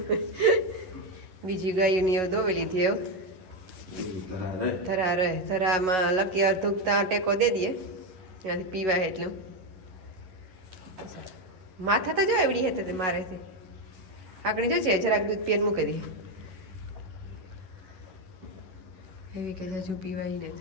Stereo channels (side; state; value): left; late; 11 ms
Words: બીજી ગાયોની એવું દોવી લીધી એવું ધરા રહે. ધરામાં લકી અર્ધુકતા ટેકો દે દઈએ ત્યાંથી પીવાય એટલું. માથા તો જો એવડી હતી તે મારે છે આકડી જો છે જરાક દૂધ પીને મૂકી દઈએ એવી કે હજુ પીવાય ને